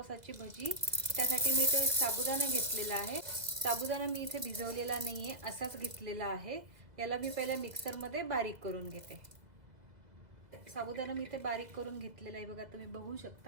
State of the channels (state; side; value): late; left; 2.0 ms